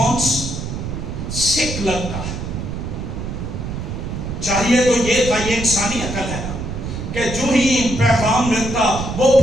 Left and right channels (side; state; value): right; noise; rumble, 6 dB below the sound